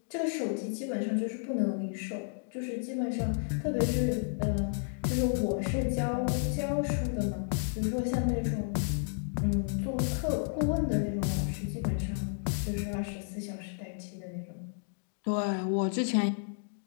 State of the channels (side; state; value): right; silent; digital silence